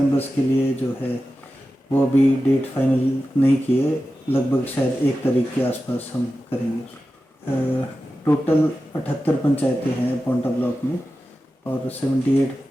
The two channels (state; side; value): normal; both; correlation 0.93